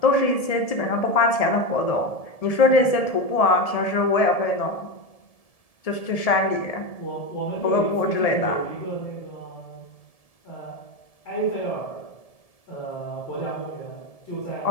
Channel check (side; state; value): right; late; 1.7 ms